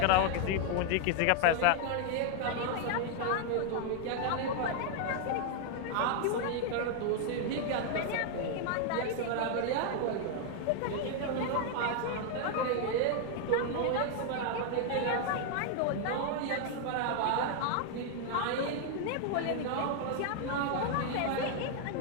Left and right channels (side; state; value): both; different; correlation 0.00